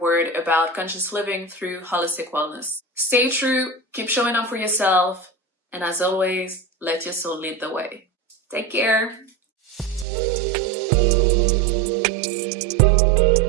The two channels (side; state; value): left; drops out; at 10.1 s